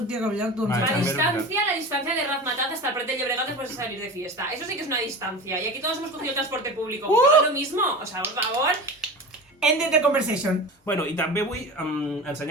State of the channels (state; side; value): normal; both; correlation 0.31